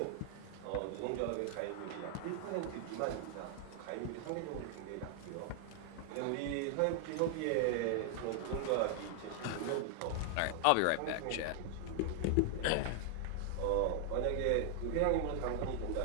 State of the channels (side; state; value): both; different; correlation 0.00